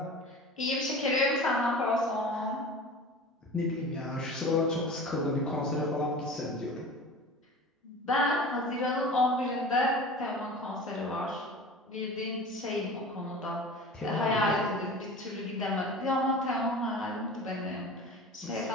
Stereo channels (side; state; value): both; normal; correlation 0.37